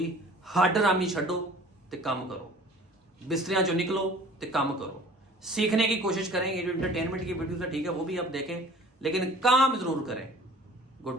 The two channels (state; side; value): normal; both; correlation 0.48